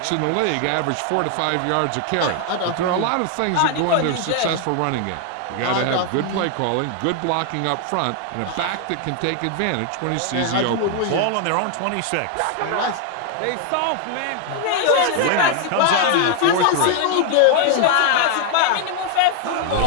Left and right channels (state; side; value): different; both; correlation 0.00